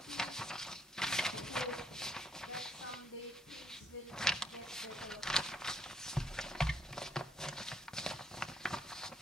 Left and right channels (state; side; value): normal; both; correlation 0.71